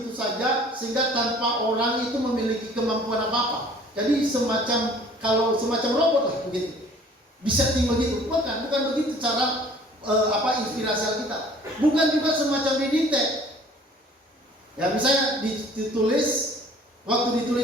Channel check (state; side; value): normal; both; correlation 0.52